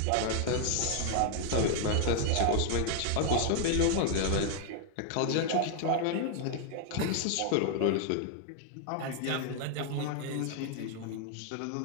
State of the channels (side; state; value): both; different; correlation 0.00